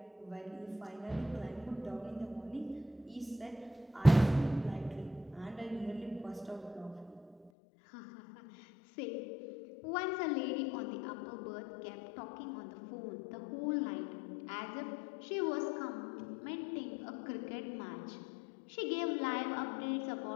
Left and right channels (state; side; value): drops out; right; at 7.5 s